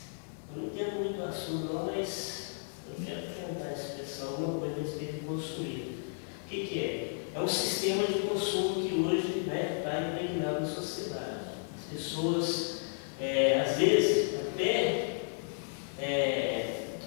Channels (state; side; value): silent; right; digital silence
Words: eu não entendo muito o assunto não, mas eu quero tentar expressar alguma coisa a respeito de consumismo. O que é? É um sistema de consumo que hoje está impregnado na sociedade. As pessoas, às vezes, até